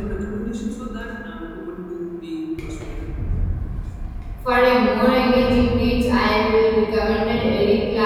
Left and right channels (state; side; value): identical; both; correlation 1.00